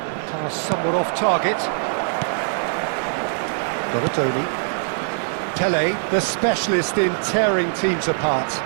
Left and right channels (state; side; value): silent; left; digital silence